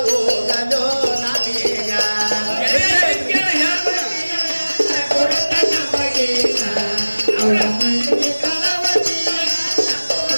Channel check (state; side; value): inverted; both; correlation -1.00